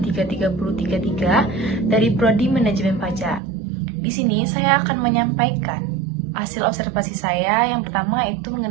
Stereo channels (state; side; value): drops out; left; at 3.4 s